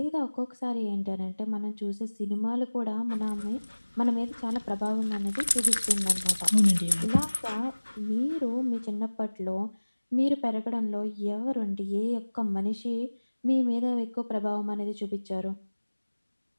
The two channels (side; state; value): both; inverted; correlation -1.00